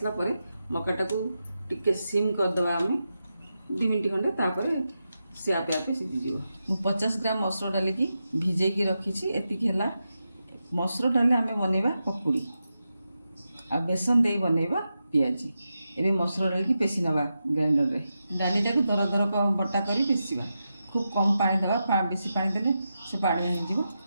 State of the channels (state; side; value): inverted; both; correlation -0.89